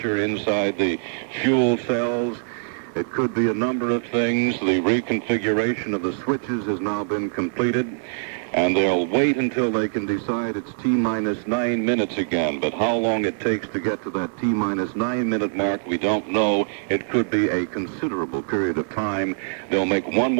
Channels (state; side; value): silent; left; digital silence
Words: inside the fuel cells. It could be a number of things. The reconfiguration of the switches has now been completed, and they'll wait until they can decide it's T-minus 9 minutes again. But how long it takes to get to that T-minus 9 minute mark, we don't know. It could be a considerable period of time. They'll make one